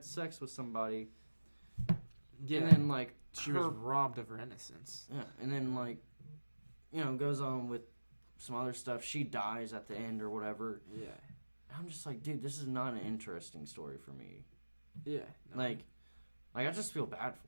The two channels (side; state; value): both; inverted; correlation -1.00